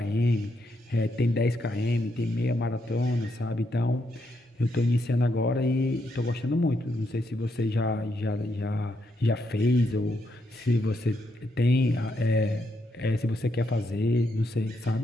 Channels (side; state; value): both; normal; correlation 0.79